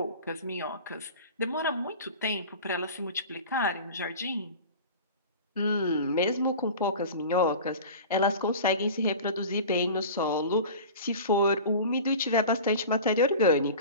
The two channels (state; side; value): inverted; both; correlation -0.36